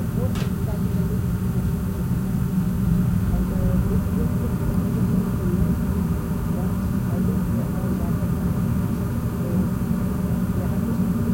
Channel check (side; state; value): both; identical; correlation 1.00